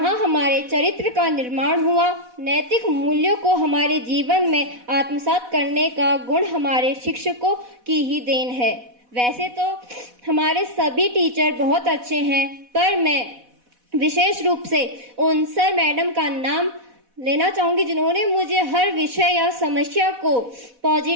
हमारे चरित्र का निर्माण हुआ। नैतिक मूल्यों को हमारे जीवन में आत्मसात करने का गुण हमारे शिक्षकों की ही देन है। वैसे तो हमारे सभी टीचर बहुत अच्छे हैं, पर मैं विशेष रूप से उन सर मैडम का नाम लेना चाहूंगी जिन्होंने मुझे हर विषय या समस्या को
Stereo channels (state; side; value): late; left; 4.1 ms